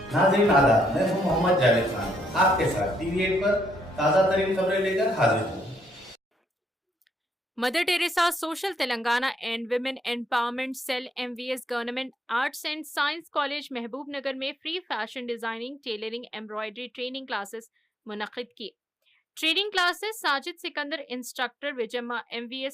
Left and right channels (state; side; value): normal; both; correlation 0.74